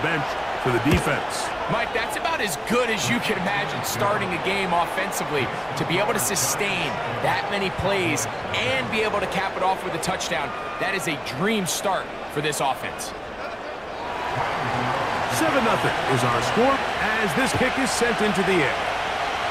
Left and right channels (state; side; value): identical; both; correlation 1.00